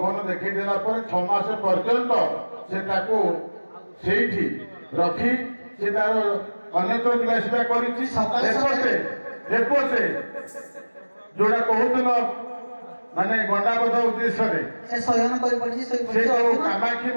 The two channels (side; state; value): both; inverted; correlation -1.00